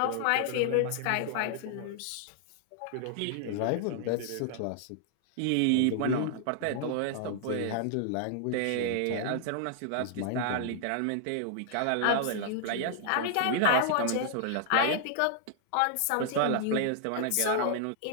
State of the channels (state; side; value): different; both; correlation -0.01